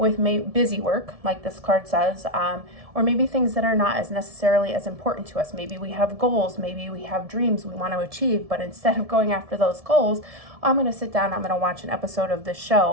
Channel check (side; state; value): left; late; 1.7 ms